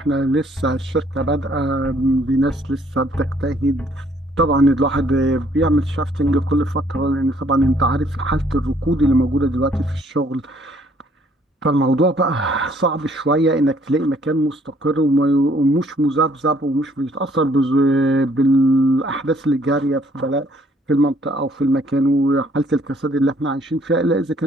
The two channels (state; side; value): normal; both; correlation 0.63